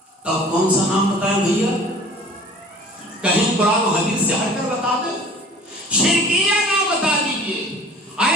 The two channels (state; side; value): normal; both; correlation 0.46